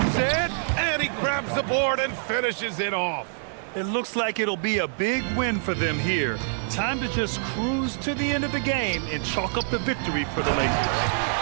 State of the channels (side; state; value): left; silent; 61 dB below the other